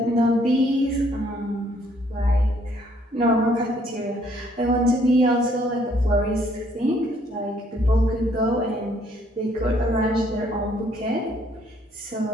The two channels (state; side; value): normal; both; correlation 0.65